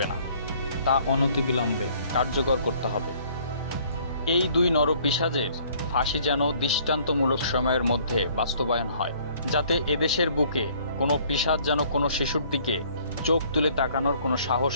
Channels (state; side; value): inverted; both; correlation -0.59